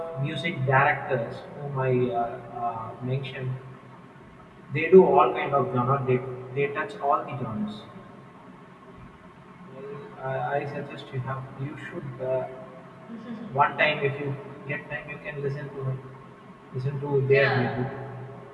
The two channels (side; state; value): both; identical; correlation 1.00